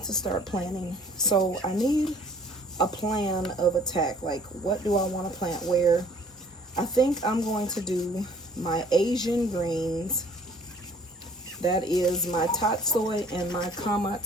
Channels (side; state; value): both; normal; correlation 0.55